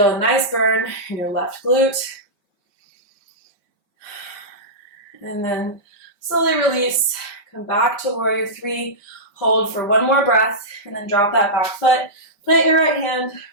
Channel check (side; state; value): right; late; 5.0 ms